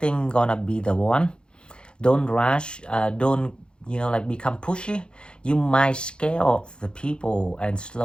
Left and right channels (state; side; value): late; right; 0.051 ms